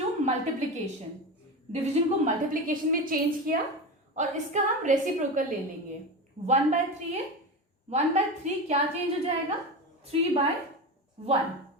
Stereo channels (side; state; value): both; normal; correlation 0.23